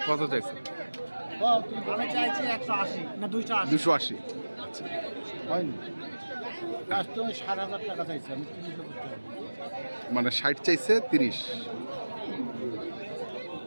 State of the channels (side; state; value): both; inverted; correlation -1.00